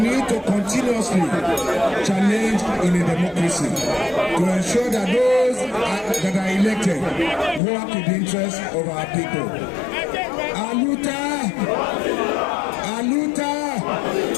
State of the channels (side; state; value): right; drops out; at 7.6 s